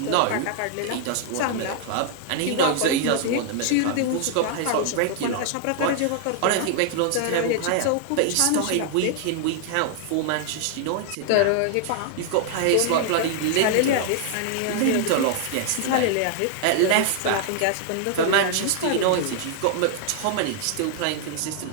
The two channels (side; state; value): both; different; correlation 0.00